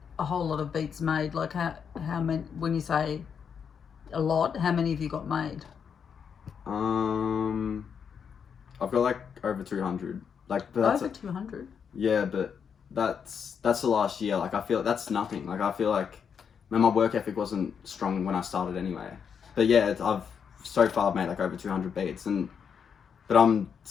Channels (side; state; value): right; quieter; 7.0 dB